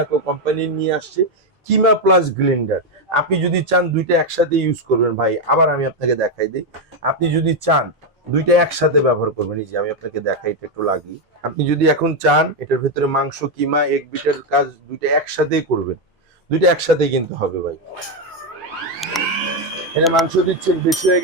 কোম্পানি নিয়ে আসছে কিমা প্লাস গ্লেন্ডার। আপনি যদি চান দুইটা একসাথে ইউজ করবেন ভাই, আবার আমি আপনাকে দেখাই দিই। আপনি যদি চান দুইটা একসাথে ব্যবহার করবেন। এই যে আমি আপনাকে দেখাই, এটা একটু লাগিয়ে, আপনি যদি এখন চান এটার ভেতরে মাংস কিমা এক বিটের কাজ দুইটা একসাথেই করবেন, দুইটা একসাথেই কিন্তু হবে ভাই। এটা মাংস দিচ্ছেন বেশি হয়ে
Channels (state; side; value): normal; both; correlation 0.05